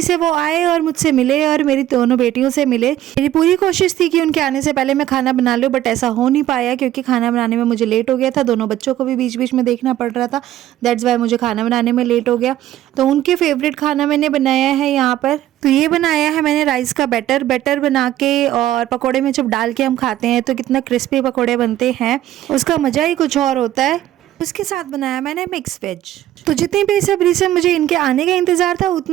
से वो आए और मुझसे मिले और मेरी दोनों बेटियों से मिले। मेरी पूरी कोशिश थी कि उनके आने से पहले मैं खाना बना लूँ, बट ऐसा हो नहीं पाया क्योंकि खाना बनाने में मुझे लेट हो गया था। दोनों बच्चों को भी बीच बीच में देखना पड़ रहा था, दैट्स वाई मुझे खाना बनाने में लेट हो गया। तो उनके फेवरेट खाना मैंने बनाया है यहाँ पर। तो ये बनाया है मैंने राइस का बैटर बना के, और पकोड़े में जब डाल के हम खाते हैं तो कितना क्रिस्पी पकोड़े बनते हैं, उसका मज़ा ही कुछ और होता है। उसके साथ बनाया मैंने मिक्स वेज। तो जितनी बेसब्री से मुझे इनके आने का इंतज़ार था,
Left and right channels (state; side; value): quieter; left; 13.2 dB